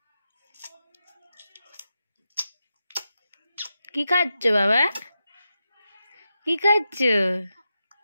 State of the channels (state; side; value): inverted; both; correlation -0.89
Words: কি খাচ্ছ বাবা, কি খাচ্ছ,